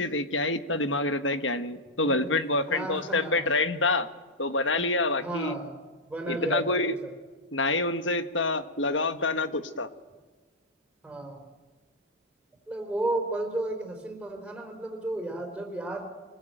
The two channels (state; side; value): normal; both; correlation -0.01